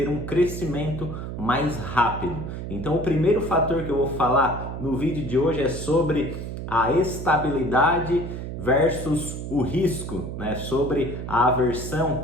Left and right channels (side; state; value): right; noise; hum, 7 dB below the sound